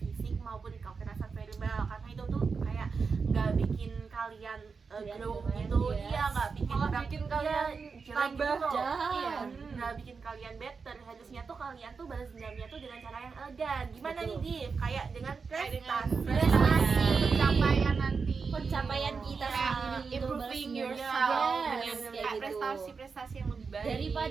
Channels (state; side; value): quieter; left; 5.1 dB